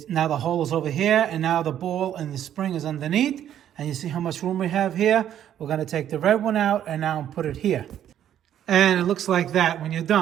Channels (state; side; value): quieter; left; 10.6 dB